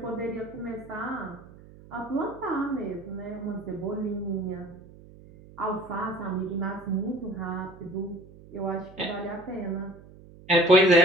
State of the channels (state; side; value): noise; right; hum, 21 dB below the sound